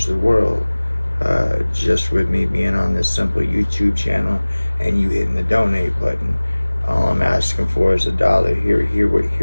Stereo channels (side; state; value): both; inverted; correlation -1.00